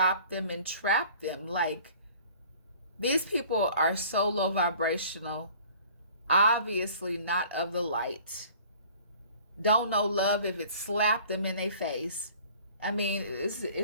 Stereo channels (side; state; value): both; inverted; correlation -0.50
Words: them, and trap them. Like, these people are so low vibrational, obviously not of the light, don't know love if it slapped them in their face. I mean, this